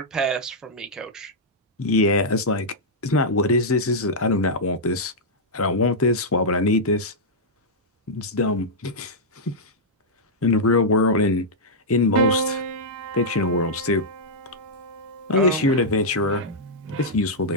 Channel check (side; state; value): both; normal; correlation -0.07